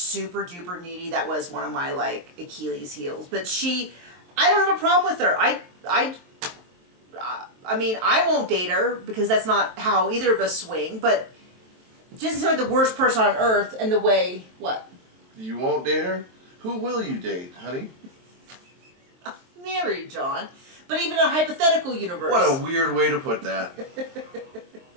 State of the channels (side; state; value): left; late; 23 ms